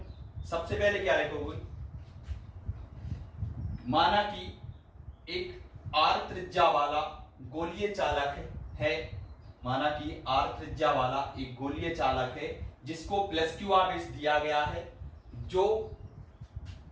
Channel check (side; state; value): both; identical; correlation 1.00